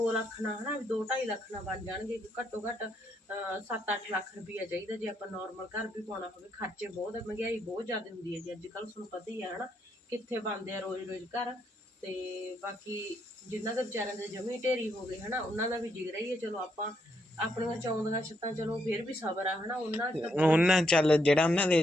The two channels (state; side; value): normal; both; correlation 0.76